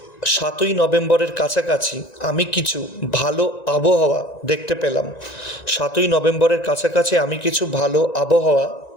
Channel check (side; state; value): right; late; 1.9 ms